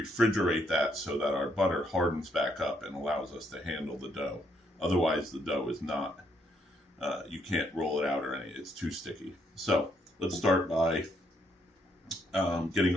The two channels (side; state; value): both; normal; correlation 0.73